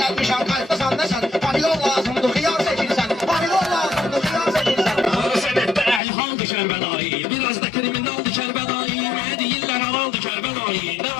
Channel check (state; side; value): drops out; right; at 6.0 s